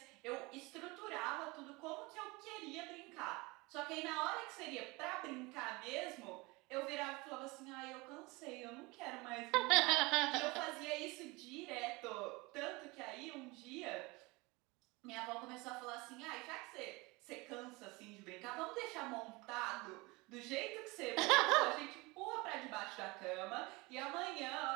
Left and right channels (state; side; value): quieter; left; 24.4 dB